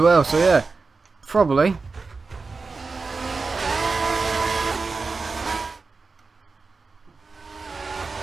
so yeah, probably.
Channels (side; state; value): left; quieter; 4.2 dB